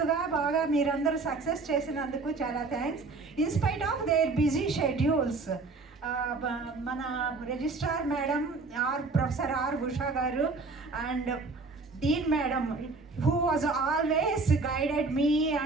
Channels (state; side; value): quieter; left; 3.8 dB